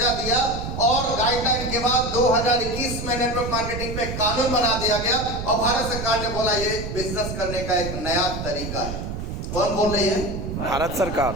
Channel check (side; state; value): right; noise; rumble, 6 dB below the sound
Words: दिया, और गाइडलाइन के बाद 2021 में नेटवर्क मार्केटिंग पे कानून बना दिया गया, और भारत सरकार ने बोला ये बिजनेस करने का एक नया तरीका है। कौन बोल रही है? भारत सरकार।